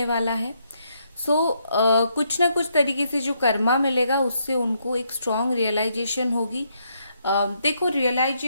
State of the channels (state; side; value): inverted; both; correlation -0.76